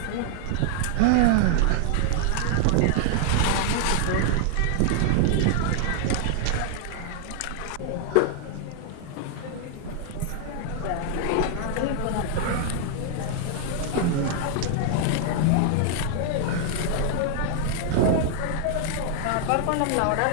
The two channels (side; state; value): both; different; correlation 0.00